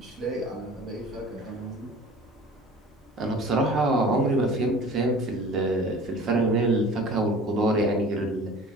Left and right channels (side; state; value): both; normal; correlation 0.43